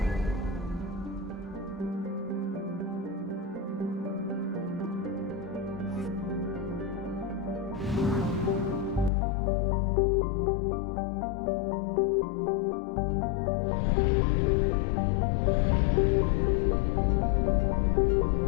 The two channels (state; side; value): drops out; right; at 9.1 s